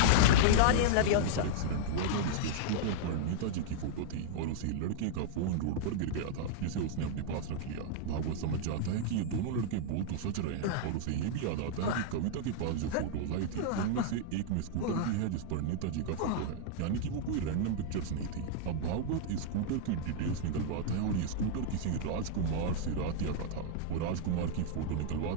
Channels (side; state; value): both; different; correlation -0.01